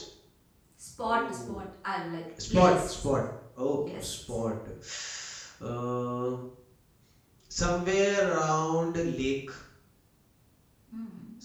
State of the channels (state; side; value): identical; both; correlation 1.00